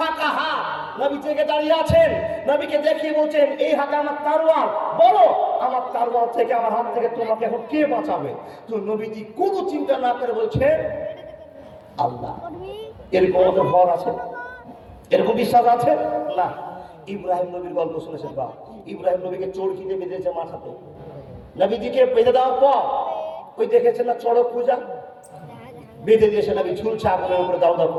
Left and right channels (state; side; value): identical; both; correlation 1.00